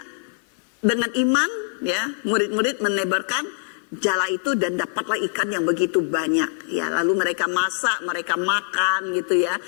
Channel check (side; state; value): right; silent; 63 dB below the other